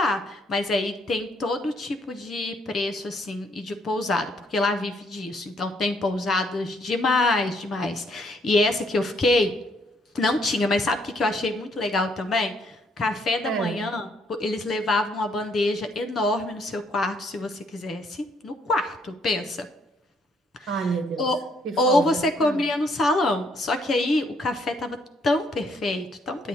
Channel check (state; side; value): normal; both; correlation 0.69